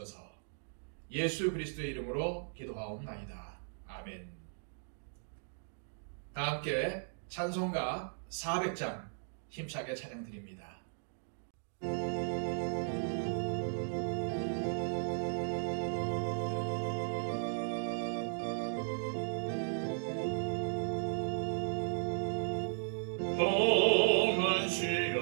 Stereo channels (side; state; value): left; silent; digital silence